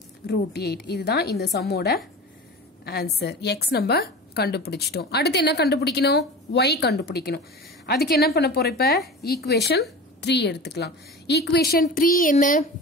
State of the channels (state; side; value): normal; both; correlation 0.33